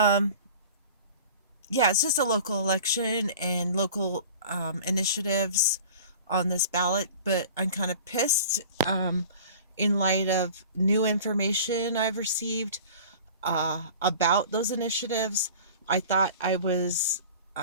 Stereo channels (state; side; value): inverted; both; correlation -0.41